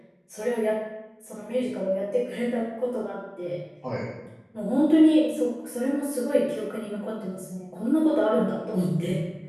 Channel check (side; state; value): both; identical; correlation 1.00